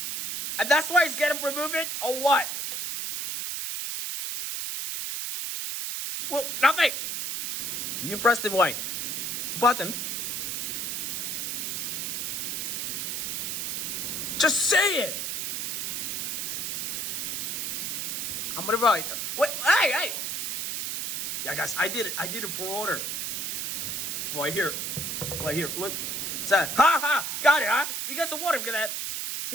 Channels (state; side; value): noise; right; hiss, 2 dB below the sound